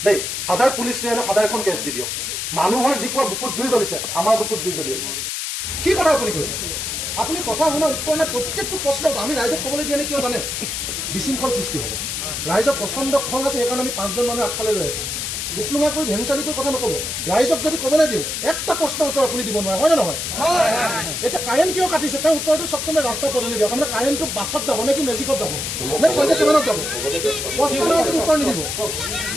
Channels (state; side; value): noise; left; hiss, 3 dB below the sound